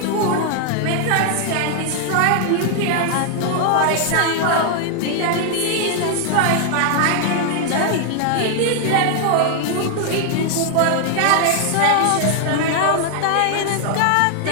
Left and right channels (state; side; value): different; both; correlation 0.00